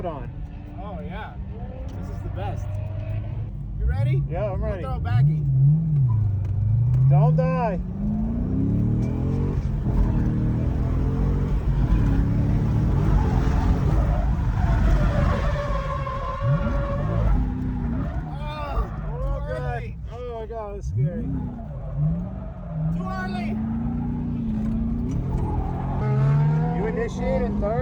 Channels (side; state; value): both; identical; correlation 1.00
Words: on. Oh yeah, this is the best. You ready? Yeah, I'm ready. I'll throw it backy. Don't die. Oh, too early. Oh my god, that's scary. Too early. You initiated